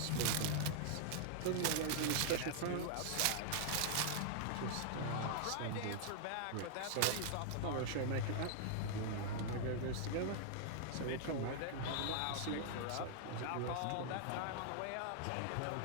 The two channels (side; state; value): both; different; correlation -0.01